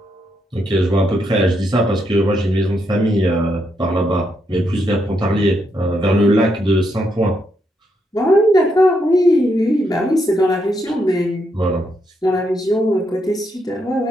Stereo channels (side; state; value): both; normal; correlation 0.79